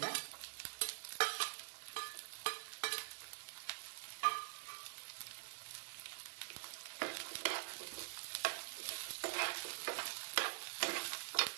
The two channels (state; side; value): silent; left; digital silence